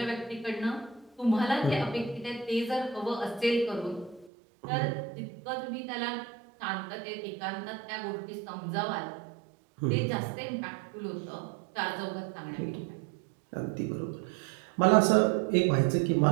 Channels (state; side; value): drops out; left; at 4.3 s